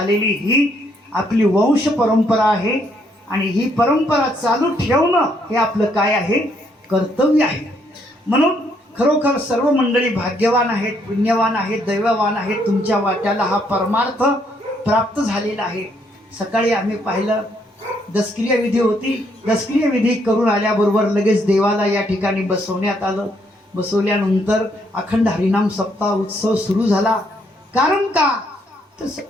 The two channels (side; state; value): both; normal; correlation 0.71